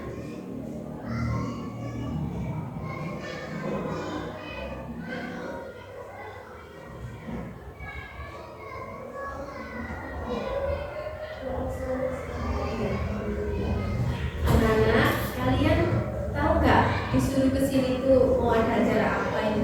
Anak-anak, kalian tahu nggak disuruh ke sini tuh mau ada acara apa ini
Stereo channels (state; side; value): identical; both; correlation 1.00